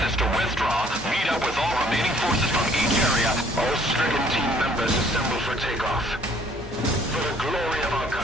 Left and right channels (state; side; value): normal; both; correlation 0.59